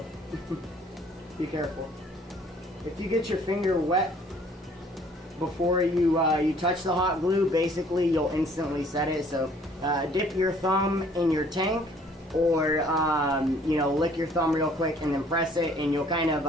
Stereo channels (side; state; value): both; normal; correlation 0.58